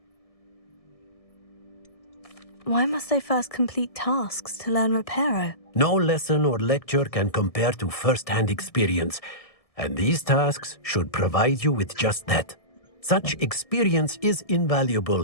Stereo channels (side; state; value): right; late; 1.7 ms